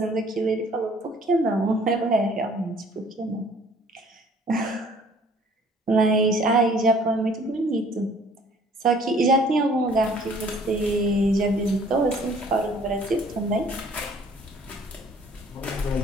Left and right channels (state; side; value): normal; both; correlation 0.56